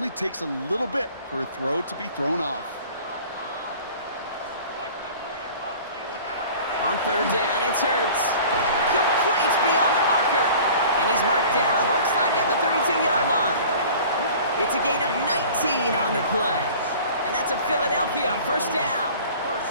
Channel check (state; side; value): inverted; both; correlation -0.45